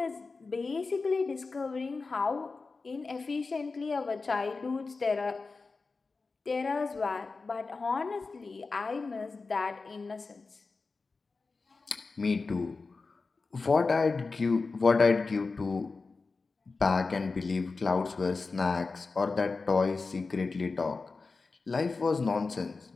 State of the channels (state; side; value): quieter; right; 4.1 dB